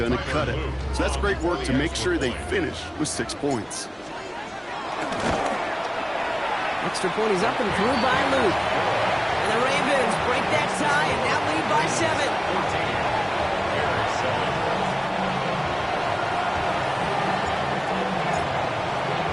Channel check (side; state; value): both; identical; correlation 1.00